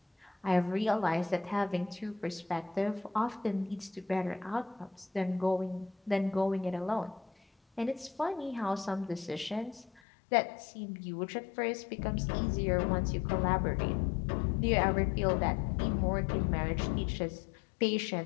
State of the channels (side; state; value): right; drops out; at 10.0 s